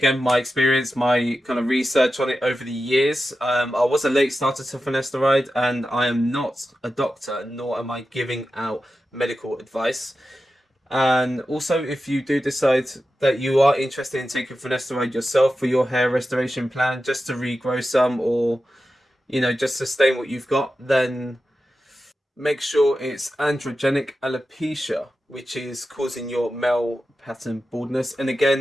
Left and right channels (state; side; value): normal; both; correlation 0.92